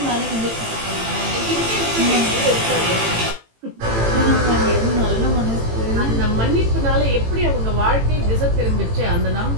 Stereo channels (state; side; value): late; left; 18 ms